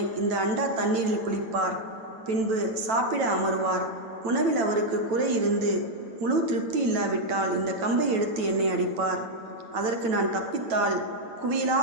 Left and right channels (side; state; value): left; late; 9.0 ms